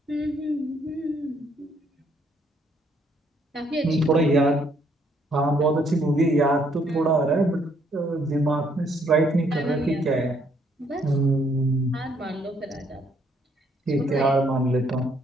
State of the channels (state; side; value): normal; both; correlation 0.69